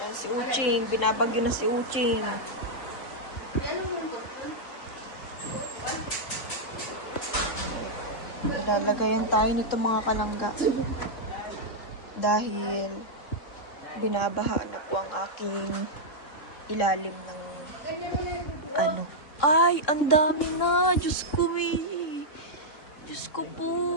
si Uching. Binabagyo na si Uching. Ilalagayan tayo nito mga kalangga. Dahil binabaha na po ang aking ilalim ng ano. Ay, ang dami na. Diyos ko, Diyos ko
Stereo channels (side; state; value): right; late; 3.6 ms